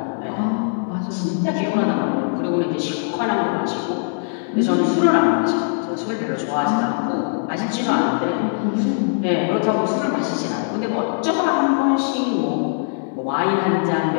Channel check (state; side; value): silent; right; digital silence